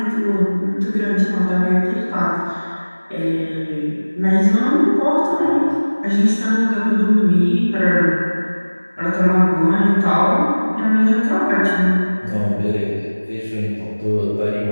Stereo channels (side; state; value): both; inverted; correlation -1.00